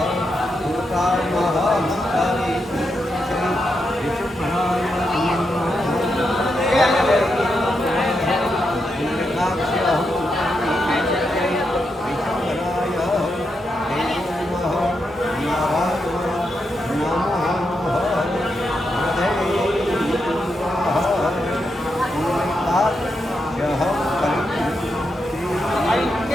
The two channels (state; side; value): normal; both; correlation 0.84